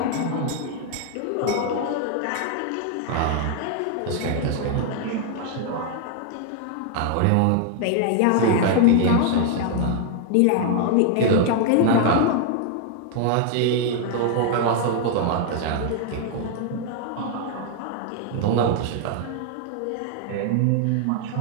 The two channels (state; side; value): different; both; correlation 0.00